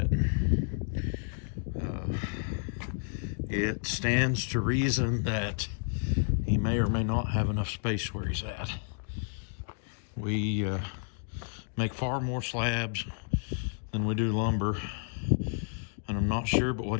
It stands to reason that he may or may not have enough space where he's at. We make far more slabs than we do lumber, and I'm not sure but what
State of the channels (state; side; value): silent; right; digital silence